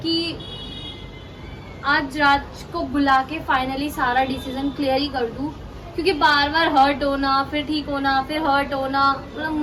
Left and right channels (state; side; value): identical; both; correlation 1.00